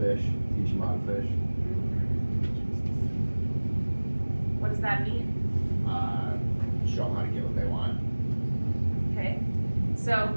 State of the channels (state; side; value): inverted; both; correlation -1.00